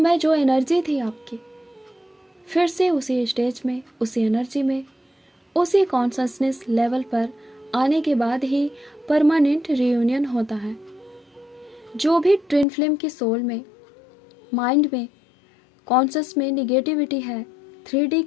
जो एनर्जी थी आपकी, फिर से उसी स्टेज में, उसी एनर्जी में, उसी कॉन्शसनेस लेवल पर आने के बाद ही परमानेंट रियूनियन होता है। जो भी ट्विन फ्लेम की सोल में, माइंड में, कॉन्शस में निगेटिविटी है, 3D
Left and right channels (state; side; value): drops out; right; at 12.7 s